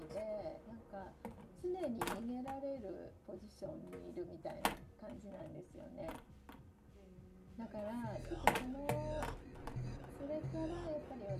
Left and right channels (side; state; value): both; identical; correlation 1.00